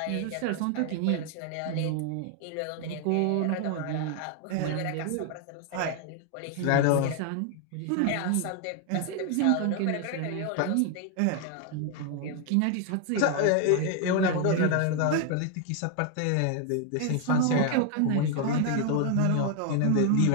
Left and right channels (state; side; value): different; both; correlation 0.00